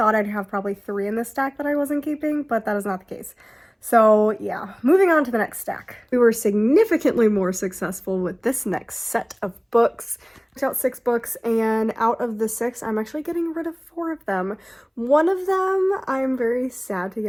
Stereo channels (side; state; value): both; identical; correlation 1.00